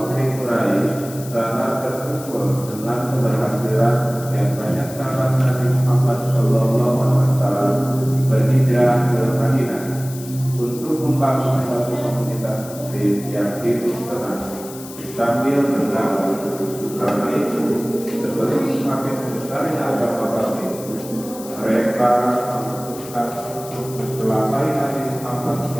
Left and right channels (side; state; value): left; noise; hiss, 15 dB below the sound